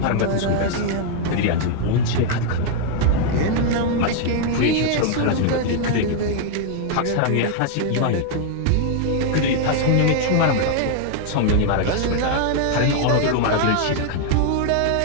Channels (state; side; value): different; both; correlation 0.00